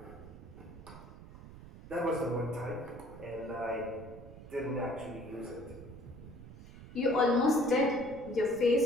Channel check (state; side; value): noise; right; rumble, 16 dB below the sound